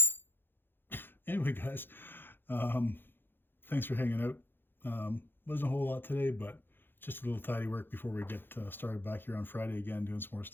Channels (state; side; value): late; right; 0.10 ms